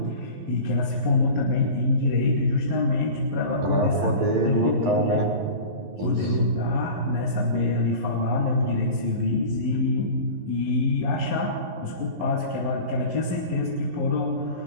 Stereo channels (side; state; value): left; late; 11 ms